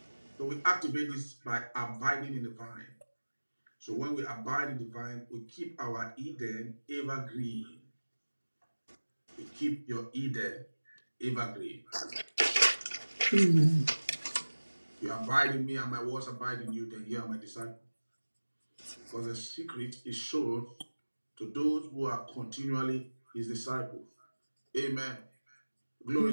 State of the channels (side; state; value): both; inverted; correlation -1.00